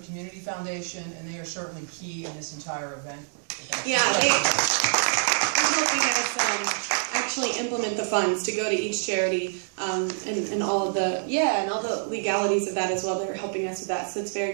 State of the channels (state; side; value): silent; left; 61 dB below the other